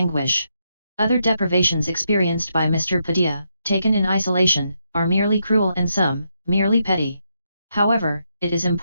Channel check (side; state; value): both; inverted; correlation -0.81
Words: Other deprivations experienced by Mr. Pidilla, taken in isolation, are merely cruel and some, merely petty. However, it is